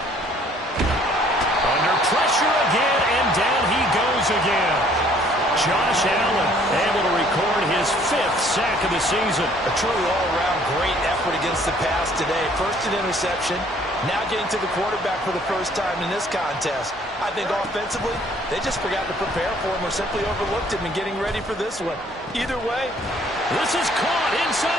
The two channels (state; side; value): normal; both; correlation 0.59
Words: Under pressure again, and down he goes again. Josh Allen able to record his 5th sack of the season. A truly all-around great effort against the pass today. First an interception, now getting to the quarterback for the first time in this contest. I think offensively, they just forgot to prepare for him or simply overlooked him in getting ready for this one. Either way, this is caught